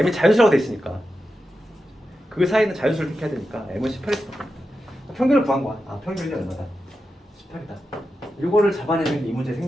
자연수라고 돼 있으니까 그 사이는 자연수를 택해야 되니까 M은 18일 수밖에 없다. 평균을 구한 거야. 평균이 얼마다? 18이다. 이거를 잡아내는 게 이 문제의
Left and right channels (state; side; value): normal; both; correlation 0.90